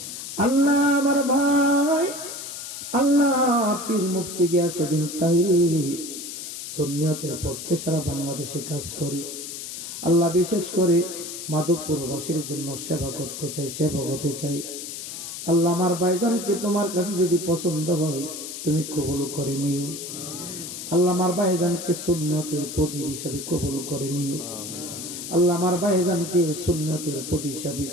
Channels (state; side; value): noise; left; hiss, 8 dB below the sound